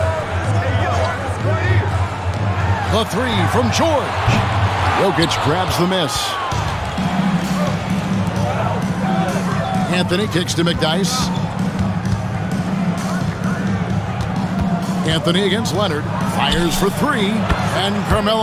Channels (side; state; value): both; identical; correlation 1.00